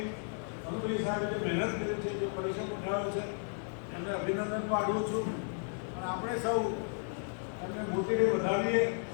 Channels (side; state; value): right; silent; 55 dB below the other